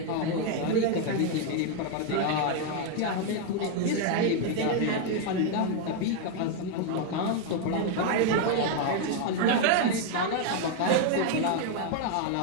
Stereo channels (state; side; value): different; both; correlation 0.01